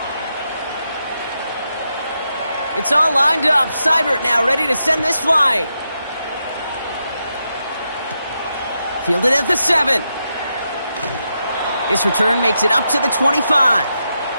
It's all lined up. Seibert now ready to send this flying. Fielded at the 7. This return makes it up to the 25.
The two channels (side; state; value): both; inverted; correlation -0.85